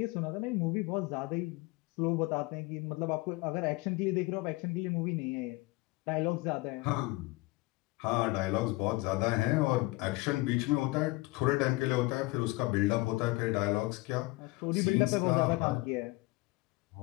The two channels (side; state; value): right; quieter; 22.6 dB